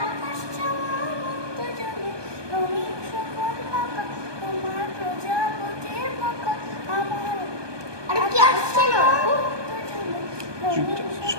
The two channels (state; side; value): late; left; 1.2 ms